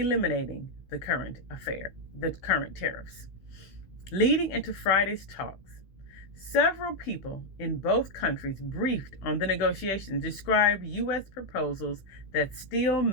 the current tariffs. Leading into Friday's talks, several people in both countries briefed on the negotiations described U.S. proposals that still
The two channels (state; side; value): late; right; 16 ms